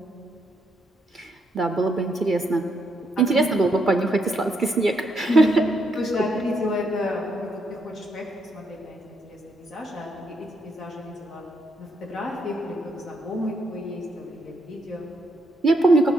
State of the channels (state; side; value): normal; both; correlation 0.77